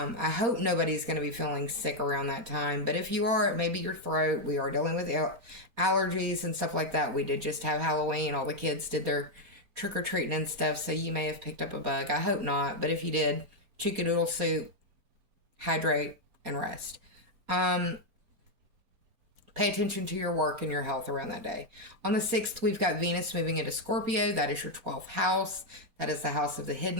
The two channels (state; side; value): late; left; 4.2 ms